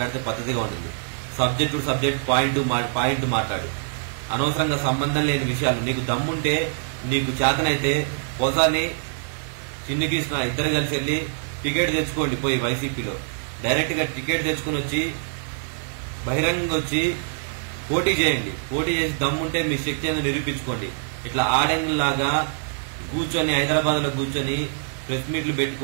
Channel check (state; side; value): silent; left; 57 dB below the other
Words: పద్ధతిగా ఉంటుంది. సబ్జెక్ట్ పాయింట్ మాట్లాడు. అనవసరంగా సంబంధం లేని విషయాలు. నీకు దమ్ముంటే, నీకు చేతనైతే పోసాని చిన్ని కృష్ణ ఇద్దరు కలిసి వెళ్ళి టికెట్ తెచ్చుకోండి, పోయి వైసీపీలో డైరెక్ట్ గా టికెట్ తెచ్చుకుని వచ్చి బహిరంగంగా వచ్చి పోటీ చేయండి, పోటీ చేసి దమ్ముంటే మీ శక్తి అనేది నిరూపించుకోండి. ఇట్లా ఆడంగిలాగా కూర్చొని హైదరాబాద్ లో కూర్చొని ప్రెస్ మీట్లు